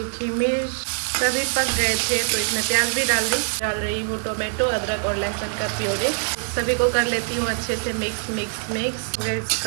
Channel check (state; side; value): silent; left; digital silence